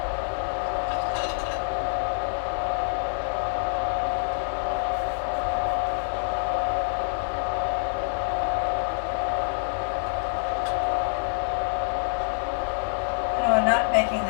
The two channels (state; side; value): silent; right; digital silence